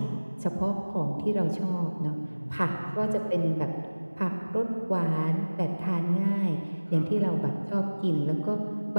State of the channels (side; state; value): both; inverted; correlation -1.00